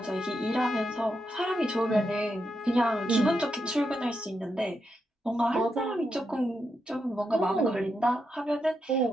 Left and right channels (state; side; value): normal; both; correlation 0.84